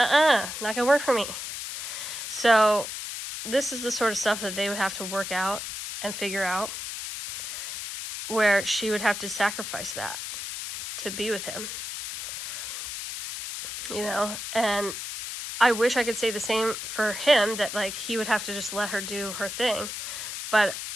gonna work for me. So this is the sort of stuff that they would have to work out and figure out, where she would have to sacrifice that to be with him. You know, and I wish I could say the same for him, that, like, he would have to just let her do her thing. But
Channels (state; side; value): noise; left; hiss, 6 dB below the sound